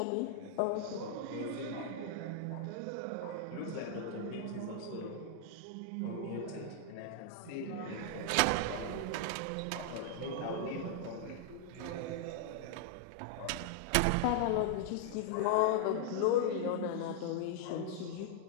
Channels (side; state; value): both; different; correlation -0.01